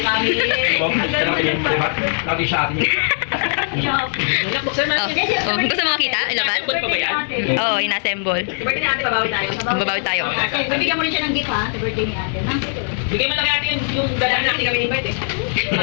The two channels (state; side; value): silent; right; 66 dB below the other